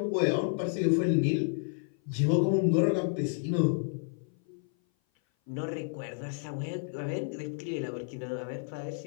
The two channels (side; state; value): right; silent; 56 dB below the other